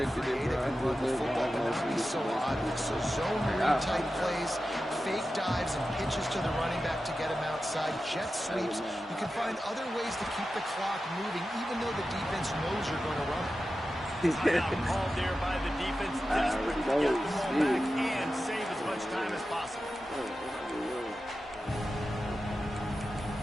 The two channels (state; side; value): normal; both; correlation 0.92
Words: be expected it, creative bro. and run the football, but not be so obvious. So zone read type plays, fake dives and pitches to the running back to get him outside, jet sweeps. You can find other ways to keep the clock moving, even though the defense knows you're going to run it. Timeout called there by the defense, desperate to get the ball back and save as much time as possible.